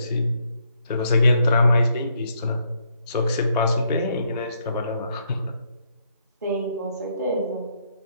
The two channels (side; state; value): both; inverted; correlation -0.73